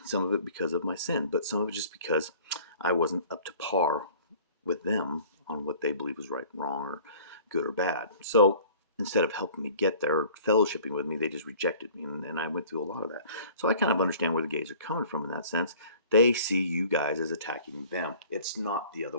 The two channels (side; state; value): both; inverted; correlation -0.49